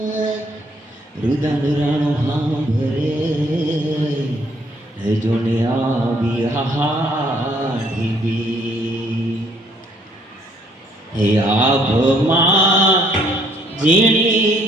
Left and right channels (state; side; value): normal; both; correlation 0.64